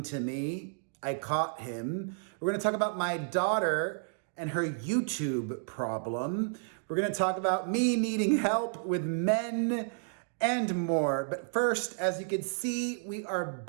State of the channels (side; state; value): left; silent; digital silence